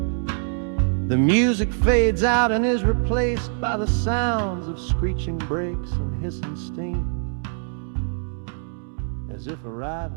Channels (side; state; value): left; silent; 63 dB below the other